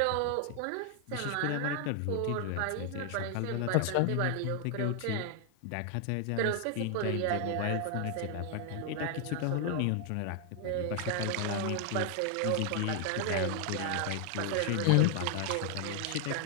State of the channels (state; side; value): different; both; correlation 0.00